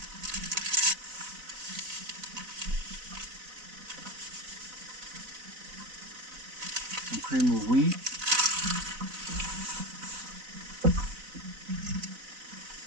Some cream of wheat.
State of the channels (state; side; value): late; left; 4.0 ms